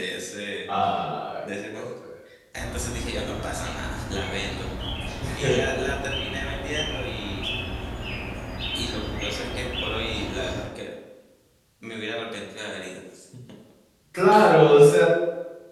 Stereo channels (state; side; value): identical; both; correlation 1.00